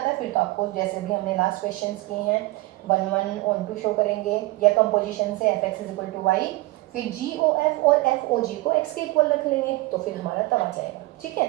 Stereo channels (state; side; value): quieter; left; 20.3 dB